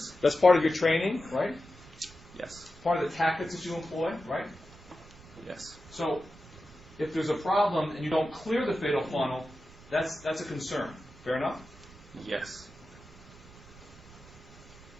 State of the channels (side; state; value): right; noise; rumble, 21 dB below the sound